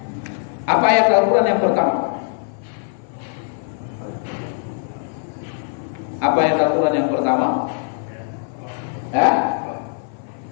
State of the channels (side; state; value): right; silent; 56 dB below the other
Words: Apa ayat Al-Quran yang pertama? Apa ayat Al-Quran yang pertama?